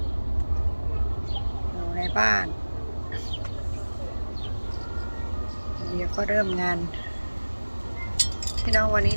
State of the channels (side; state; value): both; inverted; correlation -1.00